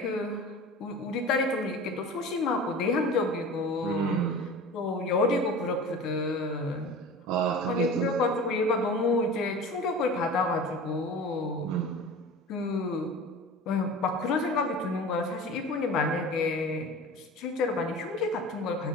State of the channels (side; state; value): both; normal; correlation 0.36